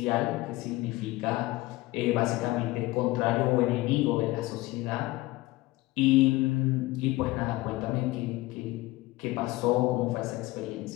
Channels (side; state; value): right; quieter; 19.4 dB